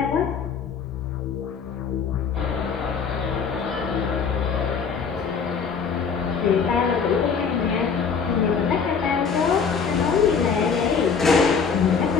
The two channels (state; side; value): quieter; right; 6.0 dB